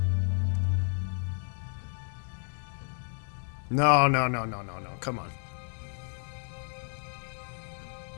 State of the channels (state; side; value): silent; right; digital silence